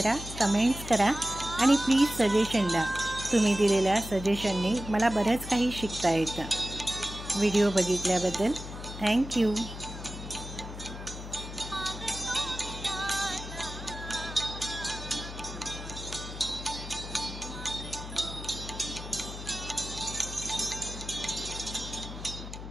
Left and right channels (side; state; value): left; noise; hum, 10 dB below the sound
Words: कमेंट्स करा आणि प्लीज सजेशन द्या. तुम्ही दिलेल्या सजेशनने मला बरंच काही शिकता येतं. व्हिडिओ बघितल्याबद्दल थँक्यू.